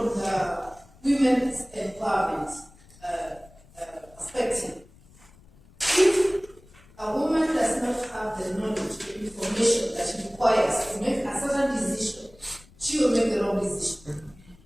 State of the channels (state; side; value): noise; left; rumble, 26 dB below the sound